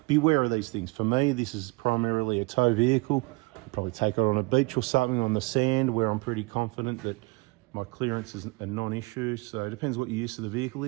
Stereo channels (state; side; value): quieter; left; 26.1 dB